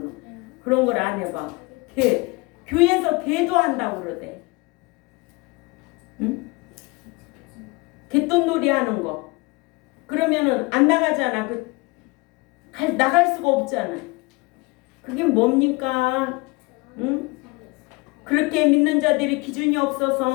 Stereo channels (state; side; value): quieter; right; 25.8 dB